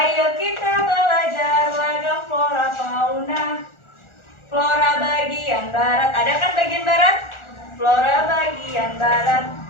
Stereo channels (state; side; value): late; right; 1.4 ms